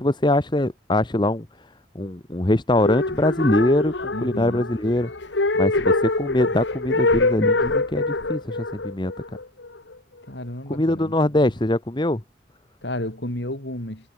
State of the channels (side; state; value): both; normal; correlation 0.42